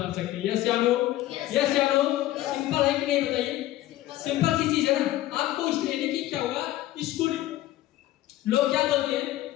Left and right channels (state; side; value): quieter; right; 15.1 dB